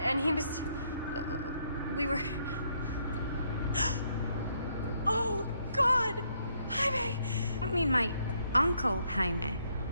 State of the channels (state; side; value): inverted; both; correlation -0.72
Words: he was... We were... Oh, God! Jaime! I mean my uncle, Jaime.